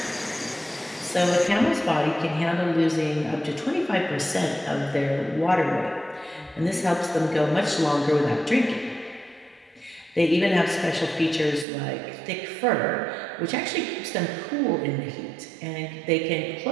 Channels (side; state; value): left; drops out; at 11.7 s